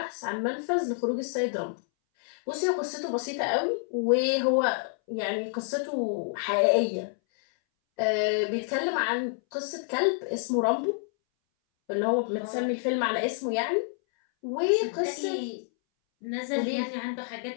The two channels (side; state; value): right; silent; 59 dB below the other